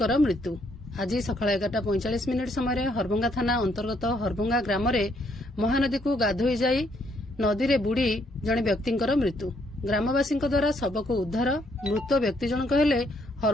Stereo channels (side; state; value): both; normal; correlation 0.71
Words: मृत्यु। आज सकाळ 11:45 समय हरभंगा थाना अंतर्गत हरभंगा ग्राम महानदी को गाधोई जाई नदी रे बुड़ी जणे व्यक्तिंकर मृत्यु। ग्रामवासी द्वारा शव को उद्धार। मृत व्यक्ति जनक हेले